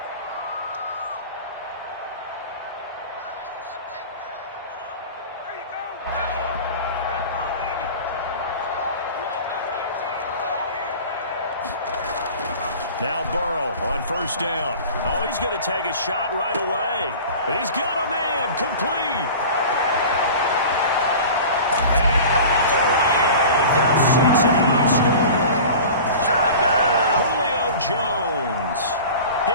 Now Burrow on first down. Oh, he's going to take a shot right away. He's got a man complete. And all the way in for Cincinnati score. Julio Jones.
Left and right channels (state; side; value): inverted; both; correlation -0.38